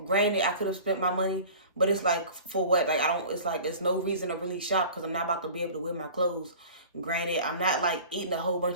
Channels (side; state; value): both; inverted; correlation -0.41